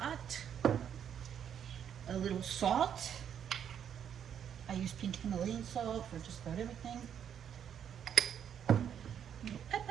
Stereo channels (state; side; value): quieter; left; 8.8 dB